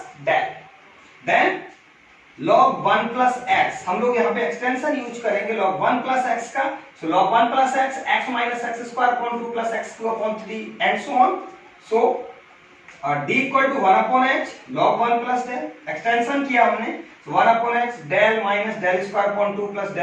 del. Then log 1 plus x, हम लोग यहाँ पे एक्सटेंशन यूज करेंगे log 1 प्लस x का, so log 1 plus x, x minus X square upon 2 plus x cube upon 3 and so on. So d equal to 1 upon h log 1 plus del, extension किया हमने, so 1 upon h del minus del square upon 2 plus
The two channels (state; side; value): identical; both; correlation 1.00